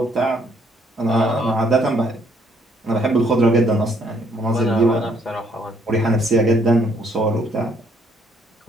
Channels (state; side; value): normal; both; correlation 0.67